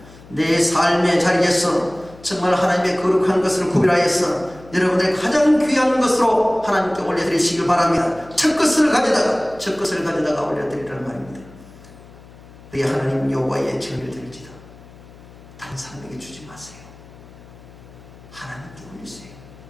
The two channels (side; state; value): left; noise; hum, 21 dB below the sound